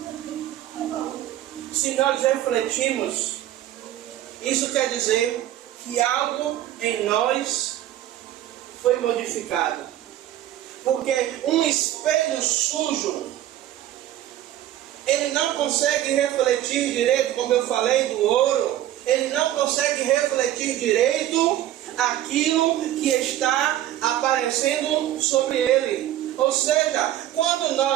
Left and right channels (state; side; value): quieter; left; 12.9 dB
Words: Se nós refletimos, isso quer dizer que algo em nós foi modificado. Porque um espelho sujo, ele não consegue refletir direito, como eu falei do ouro, ele não consegue refletir direito aquilo que está aparecendo sobre ele. Ou seja, quando